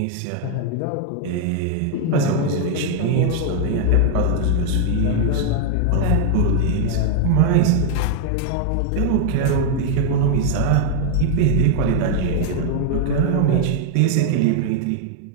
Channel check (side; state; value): both; different; correlation 0.00